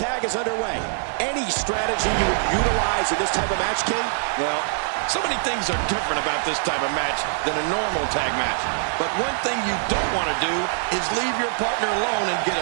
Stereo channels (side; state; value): left; silent; digital silence